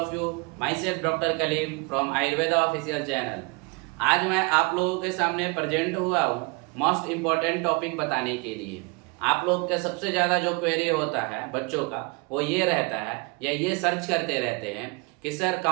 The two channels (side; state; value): left; quieter; 30.2 dB